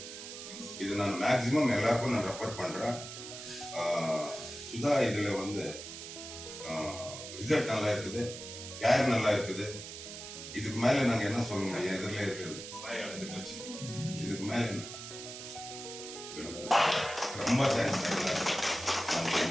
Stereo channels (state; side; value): noise; right; hiss, 10 dB below the sound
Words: இது நான் மேக்சிமம் எல்லாருக்கும் நான் ரெஃபர் பண்றேன். சுதா இதுல வந்து ரிசல்ட் நல்லா இருக்குது, கேர் நல்லா இருக்குது. இதுக்கு மேல நாங்க என்ன சொல்ல முடியும்? எதிரில இருக்குது இதுக்கு மேல என்ன? ரொம்ப தேங்க்ஸ்.